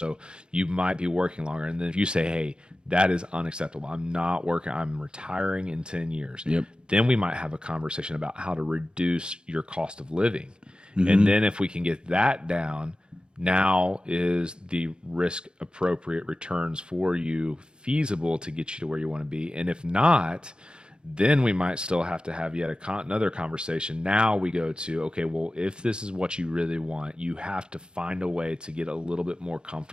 you might be working longer. And then if you say, hey, that is unacceptable, I'm not working, I'm retiring in 10 years, Yep. then we might have a conversation about how to reduce your cost of living. And then if we can get that down, now is the risk appropriate returns for you feasible to get you to where you want to be? And if not, then we might still have to have yet another conversation. Now we go to, okay, well, if this is what you really want, you have to find a way to get a little bit more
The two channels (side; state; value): left; late; 0.051 ms